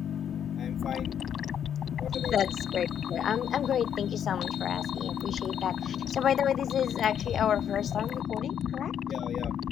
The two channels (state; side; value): quieter; right; 9.0 dB